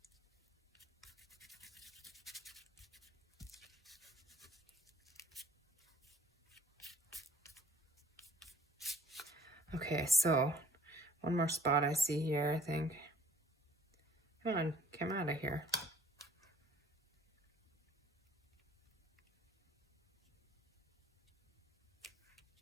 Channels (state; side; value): normal; both; correlation 0.57